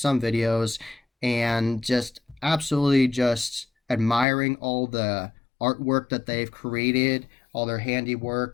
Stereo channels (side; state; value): right; drops out; at 4.2 s